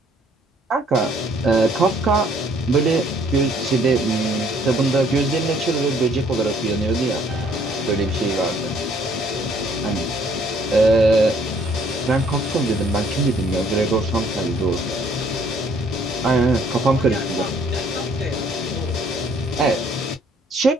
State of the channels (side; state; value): both; normal; correlation 0.62